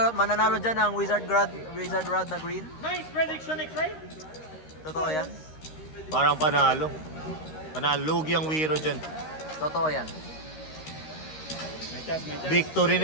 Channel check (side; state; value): right; late; 13 ms